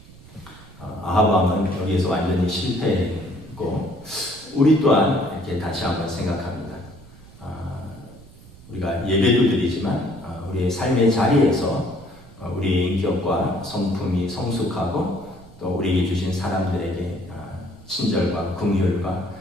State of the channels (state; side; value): noise; right; rumble, 21 dB below the sound